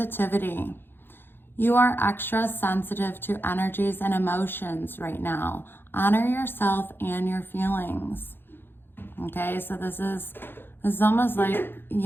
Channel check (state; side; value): late; right; 0.10 ms